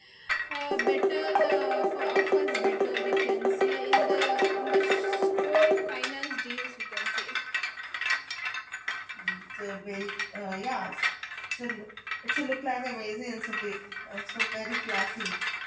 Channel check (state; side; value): identical; both; correlation 1.00